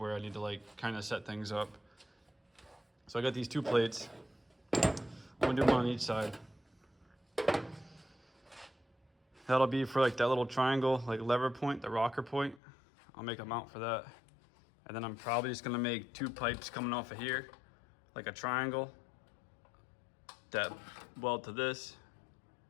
I need to like kind of set things up. So I got these 2 plates. I'm gonna do one on each side. That'll be for like that little triangle, like lever point, the rocker point. I'll make a mount for that. And then I'm probably just gonna make 2 pipes coming off of here, like a triangle that weld to this.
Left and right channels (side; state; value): right; drops out; at 12.6 s